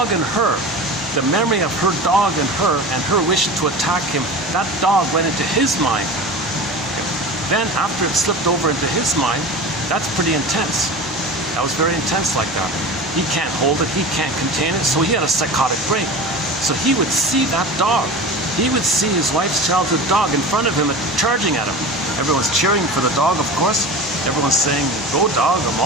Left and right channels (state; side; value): normal; both; correlation 0.32